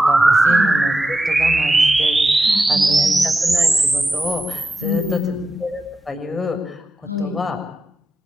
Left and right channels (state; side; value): normal; both; correlation 0.89